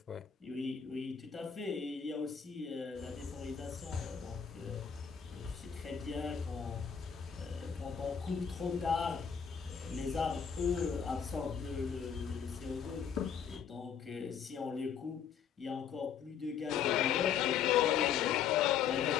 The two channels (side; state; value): right; quieter; 7.6 dB